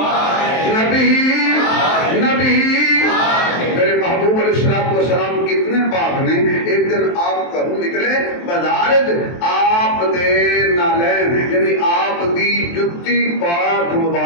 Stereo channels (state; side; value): late; right; 23 ms